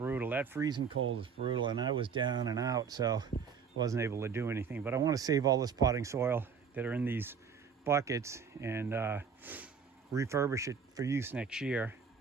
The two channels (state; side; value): quieter; left; 6.3 dB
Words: That freezing cold was brutal, and I was down and out, so wasn't able to do anything. But I want to save all this potting soil that are in these buckets and refurbish it for use next year